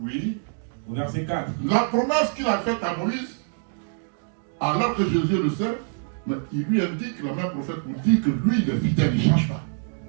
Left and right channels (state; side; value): silent; left; digital silence